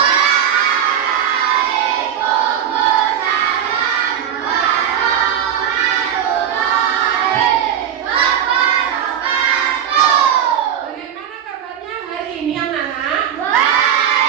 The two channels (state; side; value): quieter; left; 9.3 dB